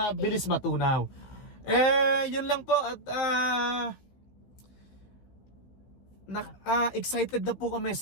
matunaw. Yun lang po. At excited na po kami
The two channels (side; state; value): right; late; 16 ms